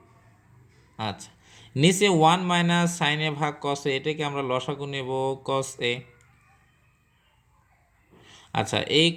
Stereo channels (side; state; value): both; identical; correlation 1.00